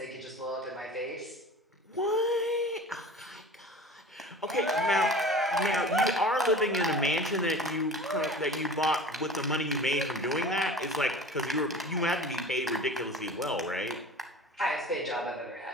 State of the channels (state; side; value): normal; both; correlation 0.39